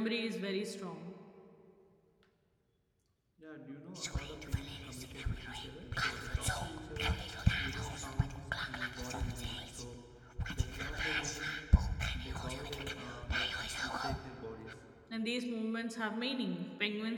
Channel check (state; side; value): identical; both; correlation 1.00